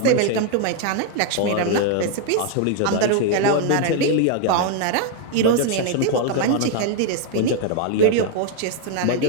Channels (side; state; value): both; different; correlation 0.00